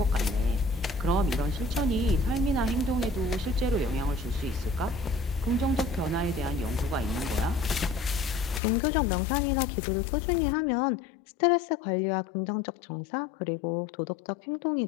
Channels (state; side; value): drops out; right; at 8.6 s